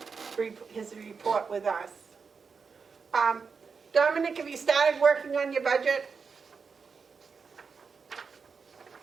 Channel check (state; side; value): quieter; left; 5.4 dB